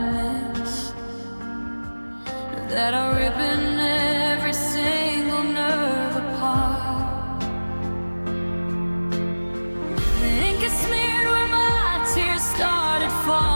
miss that are ripping every single nerve apart. The ink is smeared where my tears started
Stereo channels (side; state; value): both; inverted; correlation -1.00